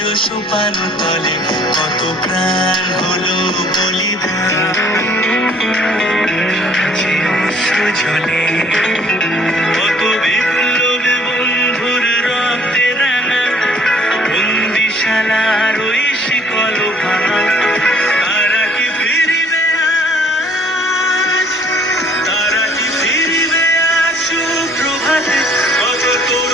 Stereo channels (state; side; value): normal; both; correlation 0.58